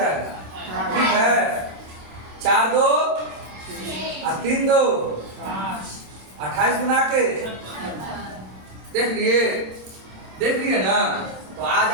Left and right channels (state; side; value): late; left; 27 ms